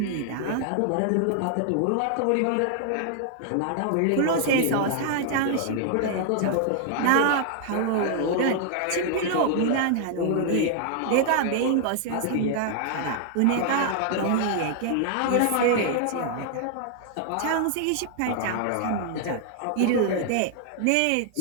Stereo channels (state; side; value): different; both; correlation 0.00